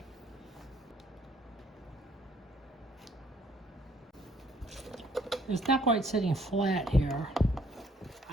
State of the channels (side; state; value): both; normal; correlation 0.63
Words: It's not quite sitting flat here.